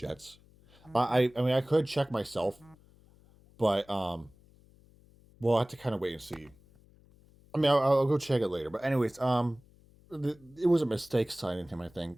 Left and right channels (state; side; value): noise; left; hum, 28 dB below the sound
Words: I mean, I could check myself, but we'll have to kind of wait and see. I mean, I'll go check it later. But anyways, it was a mistake signing him. I